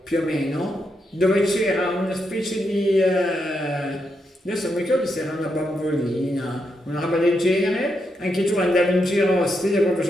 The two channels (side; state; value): both; normal; correlation 0.82